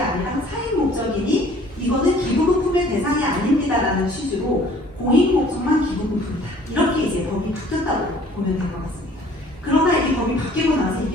사익 목적이니 이거는 기부금품의 대상이 아닙니다라는 취지로 공익 목적만 기부금품이다. 이렇게 이제 법이 바뀌었다고 보면 될 것 같습니다. 그러나 이 법이 바뀌고 나서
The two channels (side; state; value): both; normal; correlation 0.54